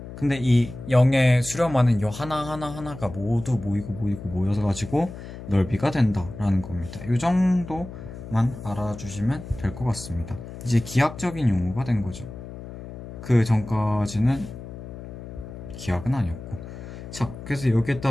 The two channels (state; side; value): noise; left; hum, 12 dB below the sound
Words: 근데 이 0에 수렴하는 요 하나하나가 모두 모이고 모여서 가지고 넓이가 된다라는 겁니다. 요 정도만 알아주시면 될 것 같습니다. 이제 기하학적인 용어가 된 거죠. 그 전까지는 기하학은 아니었고. 자, 그래서